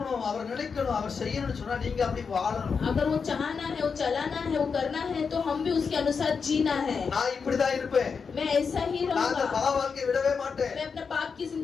அவர் நினைக்கணும், அவர் செய்யணும்னு சொன்னா நீங்க அப்படி வாழணும். अगर वो चाहना है, वो चलाना है, वो करना है तो हम भी उसके अनुसार जीना है. நான் இப்படிதான் இருப்பேன். मैं ऐसा ही நான் அந்த रहूंगा. பாவ வாழ்க்கையை விடவே மாட்டேன். मैं अपने पाप की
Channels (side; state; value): right; quieter; 5.6 dB